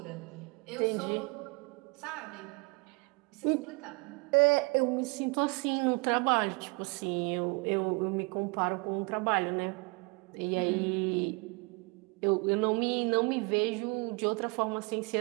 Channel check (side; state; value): left; quieter; 29.6 dB